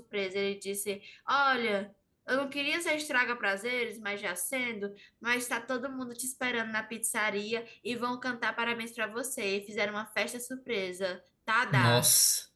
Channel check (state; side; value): identical; both; correlation 1.00